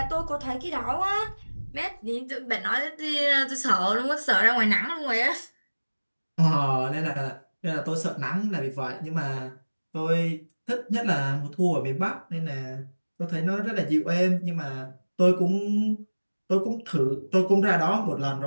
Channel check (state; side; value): inverted; both; correlation -1.00